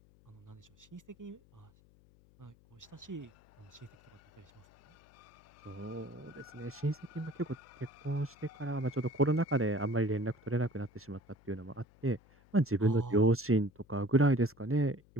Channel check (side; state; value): left; noise; hum, 28 dB below the sound